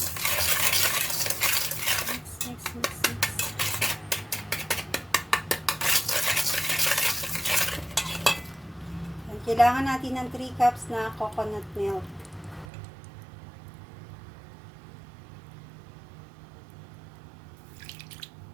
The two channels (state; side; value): drops out; left; at 12.7 s